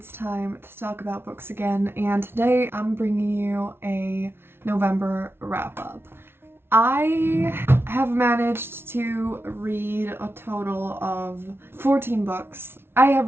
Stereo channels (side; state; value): left; late; 0.12 ms